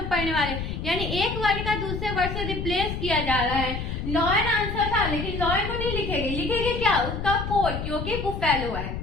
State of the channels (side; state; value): left; noise; rumble, 5 dB below the sound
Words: पढ़ने वाले, यानी एक वर्ड का दूसरे वर्ड से रिप्लेस किया जा रहा है। लॉयन आंसर था, लेकिन लॉयन को नहीं लिखेंगे, लिखेंगे क्या, उसका कोड, क्योंकि बुफेलो है।